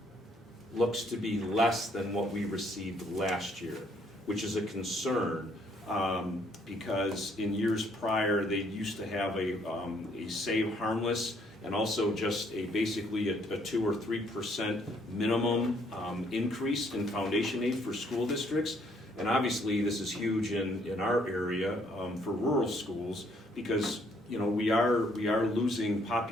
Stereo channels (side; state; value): both; normal; correlation 0.66